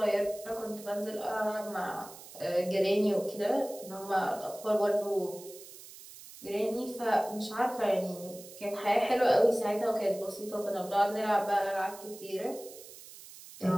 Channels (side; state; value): right; noise; hiss, 17 dB below the sound